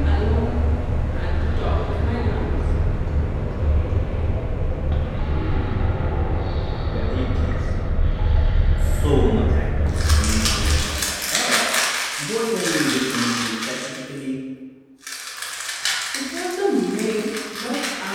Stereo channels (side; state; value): both; identical; correlation 1.00